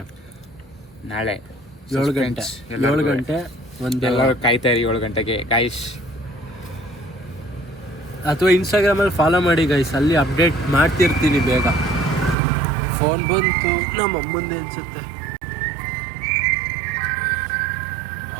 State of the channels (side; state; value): left; drops out; at 12.4 s